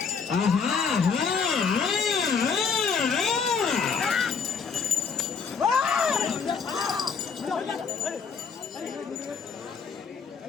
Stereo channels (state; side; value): quieter; right; 5.8 dB